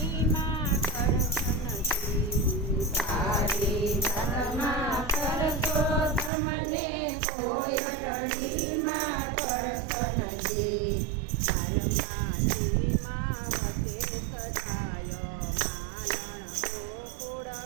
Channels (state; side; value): drops out; left; at 6.3 s